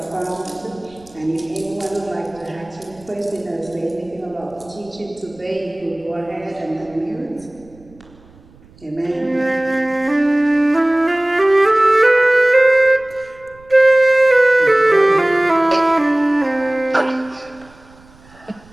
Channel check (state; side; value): noise; right; rumble, 26 dB below the sound